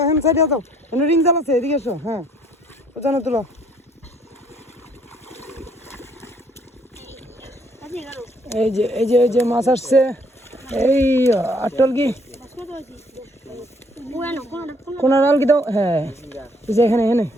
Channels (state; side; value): normal; both; correlation 0.65